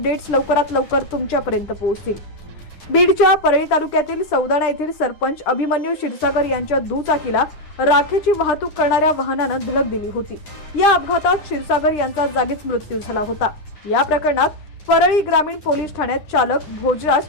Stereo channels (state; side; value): late; right; 9.9 ms